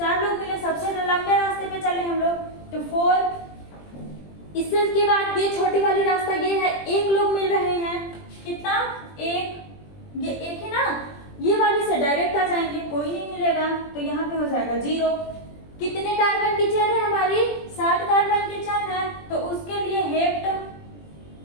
लोग मिले, सबसे लंबे रास्ते पे चले हम लोग, तो 4। इससे के बाद ये छोटी वाली रास्ता ये है, 1 लोग मिल रहे हैं। कितना? 1, ये 1 है ना, ये वाली से डायरेक्ट आ जाएंगे, कोई नहीं मिलेगा, तो यहाँ पे हो जाएगा 0। कितने कार्बन की चेन है हमारी? 7 कार्बन की चेन है, तो उसके लिए हेप्ट।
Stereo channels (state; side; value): late; right; 20 ms